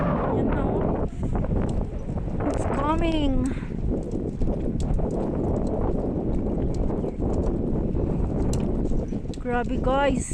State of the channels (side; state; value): both; identical; correlation 1.00